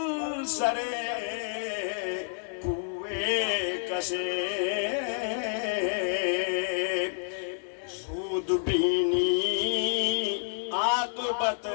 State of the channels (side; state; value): right; silent; 58 dB below the other